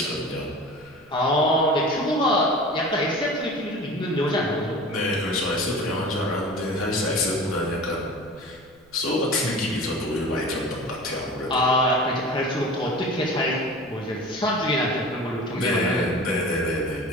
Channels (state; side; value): noise; right; rumble, 30 dB below the sound